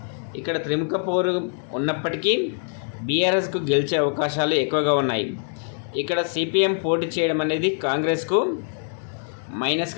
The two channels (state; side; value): silent; right; digital silence